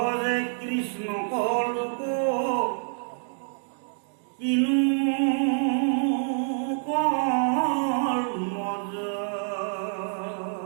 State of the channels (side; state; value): left; silent; digital silence